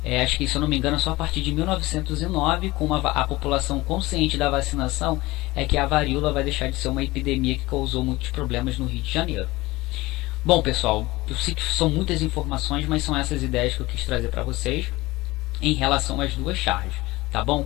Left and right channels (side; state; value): right; quieter; 20.1 dB